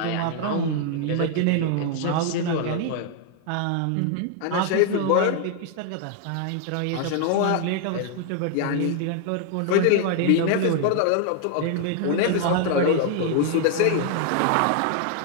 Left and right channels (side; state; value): both; different; correlation 0.00